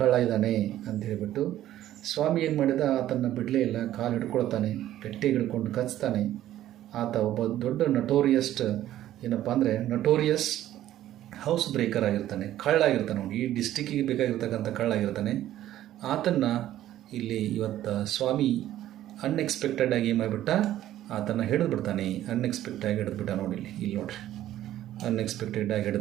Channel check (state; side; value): quieter; left; 13.0 dB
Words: ಕಳ್ಳ ಇದ್ದಾನೆ ಅಂತ ಹೇಳಿಬಿಟ್ಟು ಸ್ವಾಮಿ ಏನು ಮಾಡಿದ, ಆತನ ಬಿಡಲೇ ಇಲ್ಲ, ಕಾಲು ಹಿಡ್ಕೊಳ್ತಾನೆ, ಗಟ್ಟಿಗೆ ಹಿಡ್ಕೊಂಡು ಕಚ್ತಾನೆ. ಆತ ಒಬ್ಬ ದೊಡ್ಡ ನಟೋರಿಯಸ್ ಹೌಸ್ ಬ್ರೇಕರ್ ಆಗಿರ್ತಾನೆ, ಕಳ್ಳಾಗಿರ್ತಾನೆ. ಅವನು ಈ ಡಿಸ್ಟಿಕ್ಕಿಗೆ ಬೇಕಾಗಿರ್ತಕ್ಕಂಥ ಕಳ್ಳಾಗಿರ್ತಾನೆ. ಆತನ್ನು ಇಲ್ಲಿ ಇವತ್ತು ಸ್ವಾಮಿ ಅನ್ಎಕ್ಸ್ಪೆಕ್ಟೆಡ್ ಆಗಿ ಏನು ಮಾಡಿಬಿಟ್ಟ, ಆತನ್ನು ಹಿಡಿದ್ಬಿಡ್ತಾನೆ. ಅನ್ಎಕ್ಸ್ಪೆಕ್ಟಾಗಿ ಹಿಡಿದ್ಬಿಟ್ಟ ನೋಡಿ, ಇಲ್ಲಿ ನೋಡ್ರಿ, ಅನ್ಎಕ್ಸ್ಪೆಕ್ಟೆಡ್ ಆಗಿ